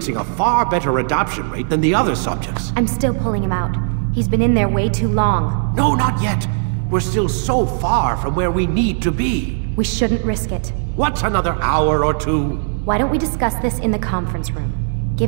a far better adoption rate than the other subjects. I'm still pulling him out. He's been in there way too long. No, not yet. We're still so far from where we need to be. We shouldn't risk it. What's another hour or two? Why don't we discuss this in the conference room?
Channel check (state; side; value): silent; left; 67 dB below the other